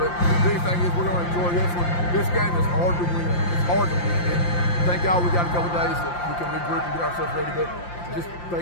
the big thing is we're going to enjoy this one. This game is hard to win. It's hard to win. And thank God we got a couple days that we can regroup and get ourselves ready. But just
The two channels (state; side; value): late; right; 5.8 ms